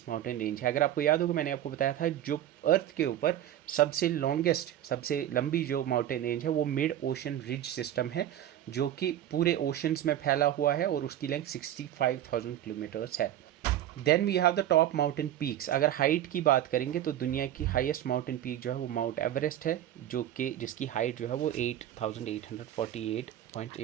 माउंटेन रेंज है। अगर आपको याद होगा मैंने आपको बताया था जो अर्थ के ऊपर सबसे लॉन्गेस्ट, सबसे लंबी जो माउंटेन रेंज है वो मिड ओशन रिज सिस्टम है, जो कि पूरे ओशंस में फैला हुआ है और उसकी लेंथ 65,000 किलोमीटर्स है। Then we have the top mountain peaks. अगर हाइट की बात करेंगे तो दुनिया की हाईएस्ट माउंटेन पीक जो है वो माउंट एवरेस्ट है, जो कि जिसकी हाइट जो है वो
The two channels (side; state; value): left; quieter; 11.9 dB